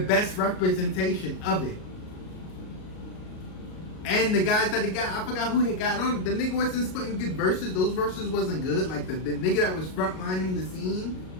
representation of it. And the guys that he got, I forgot who he got on. The nigga wasn't spitting good verses. Those verses wasn't good. Like the nigga that was frontlining the scene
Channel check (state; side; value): late; right; 38 ms